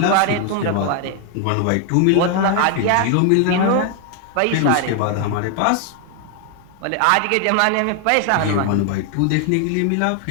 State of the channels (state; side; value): different; both; correlation 0.00